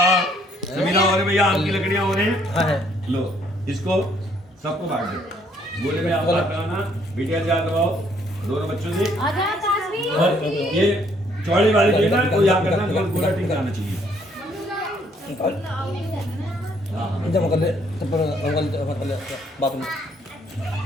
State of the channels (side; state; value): both; normal; correlation 0.66